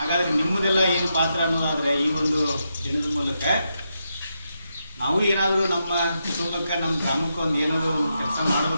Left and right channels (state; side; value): inverted; both; correlation -0.84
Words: ನಿಮ್ಮದೆಲ್ಲ ಏನು ಪಾತ್ರ ಅನ್ನೋದಾದರೆ ಈ ಒಂದು ದಿನದ ಮೂಲಕ ನಾವು ಏನಾದರೂ ನಮ್ಮ ಕುಟುಂಬಕ್ಕೆ, ನಮ್ಮ ಗ್ರಾಮಕ್ಕೆ ಒಂದು ಏನಾದರೂ ಒಂದು ಕೆಲಸ